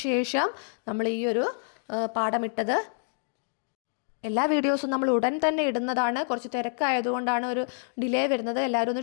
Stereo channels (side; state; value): right; silent; digital silence